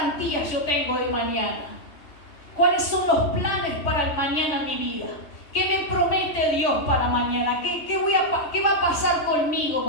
yo tengo de mañana? ¿Cuáles son los planes para el mañana en mi vida? ¿Qué me promete Dios para mañana? ¿Qué va a pasar conmigo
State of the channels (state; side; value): late; right; 3.5 ms